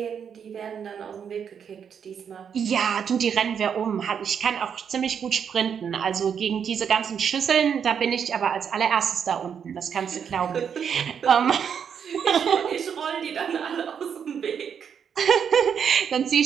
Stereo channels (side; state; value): left; quieter; 7.5 dB